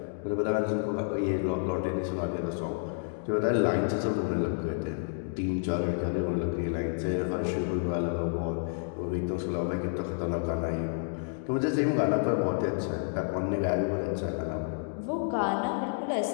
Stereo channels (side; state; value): right; silent; digital silence